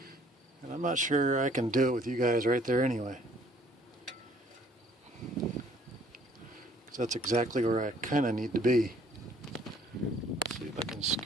And I'm not sure I can do it with you guys right there anyway. So that's exactly where I kind of need to be. Let's see if I can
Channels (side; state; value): both; normal; correlation 0.59